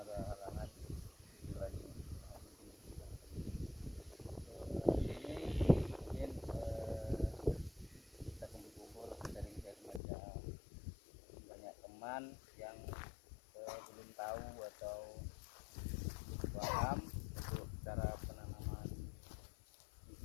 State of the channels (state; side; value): drops out; right; at 10.0 s